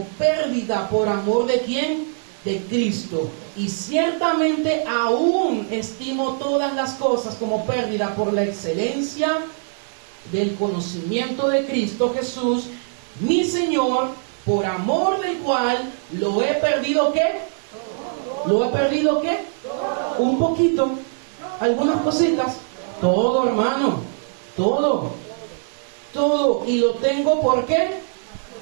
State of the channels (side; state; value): left; silent; digital silence